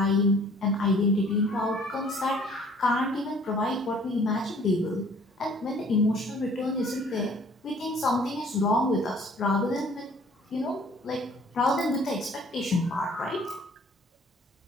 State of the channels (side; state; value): both; normal; correlation 0.55